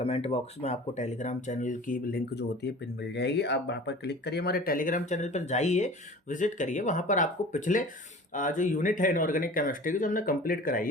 बॉक्स में आपको टेलीग्राम चैनल की लिंक जो होती है पिन मिल जाएगी, आप वहाँ पर क्लिक करिए, हमारे टेलीग्राम चैनल पर जाइए, विजिट करिए, वहाँ पर आपको पिछले जो यूनिट है इनऑर्गेनिक केमिस्ट्री की जो हमने कंप्लीट कराई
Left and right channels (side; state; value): both; normal; correlation 0.41